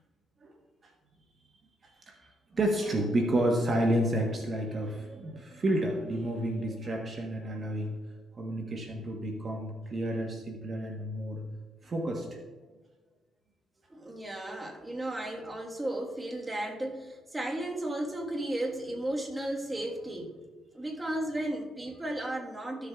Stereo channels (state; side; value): normal; both; correlation 0.78